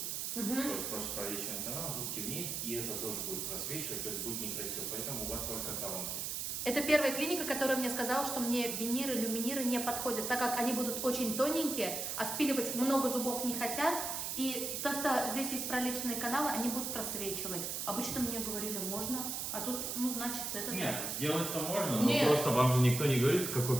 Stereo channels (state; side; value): noise; right; hiss, 3 dB below the sound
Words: То есть просто пролеченный канал, зуб темнеет, и это тоже будет просвечивать, то есть будет некрасиво. Поэтому у вас только коронки. Это первая клиника, которая мне сказала, что мне виниры, люминиры не подходят, так как они будут очень тоненькие, а спиливать много зубов не хотят. И то, что здесь есть пролеченные каналы, они будут просвечивать. Обычно мне говорили, можно, а тут, значит, это... Нет, сделать-то можно, Нет. но просто вам же никто не говорит,